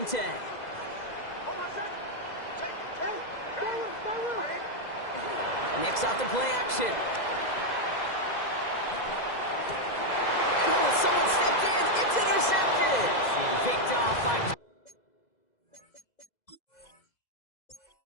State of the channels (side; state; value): right; late; 2.0 ms